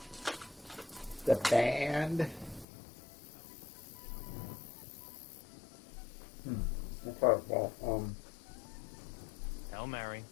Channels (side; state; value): right; drops out; at 2.7 s